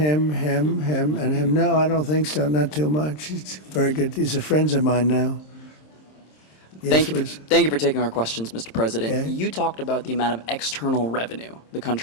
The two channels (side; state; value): right; late; 26 ms